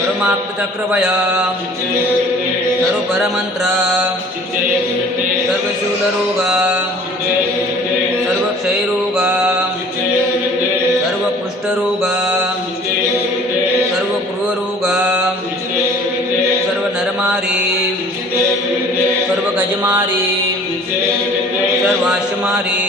सर्वपरमंत्र सर्वशूलरोग सर्वक्षयरोग सर्वकुष्ठरोग सर्वक्रूररोग सर्वनरमारी सर्वगजमारी सर्वाश्वमारी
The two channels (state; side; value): normal; both; correlation 0.50